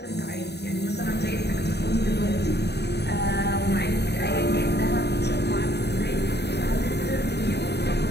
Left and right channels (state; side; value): late; right; 0.48 ms